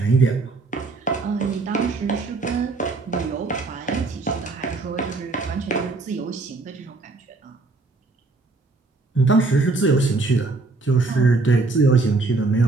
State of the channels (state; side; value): quieter; left; 3.6 dB